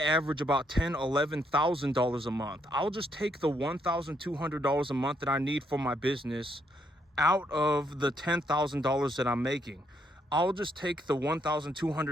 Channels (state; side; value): normal; both; correlation 0.74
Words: average about $11,000 a month. I'll just take the $1,200 a month that I need for my business out of the $10,000 that I'm making. I'll just take the